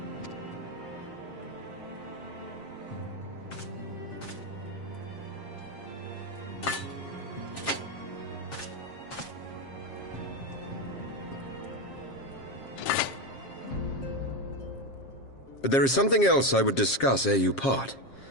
But there is something else I would discuss ere you part.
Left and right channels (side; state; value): right; late; 7.4 ms